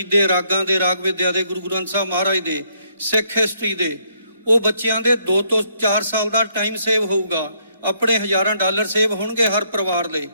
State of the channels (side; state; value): both; inverted; correlation -0.70